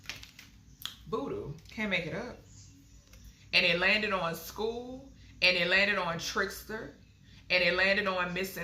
Voodoo. Can't make it up. And it landed on school, and it landed on trickster, and it landed on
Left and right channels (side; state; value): both; identical; correlation 1.00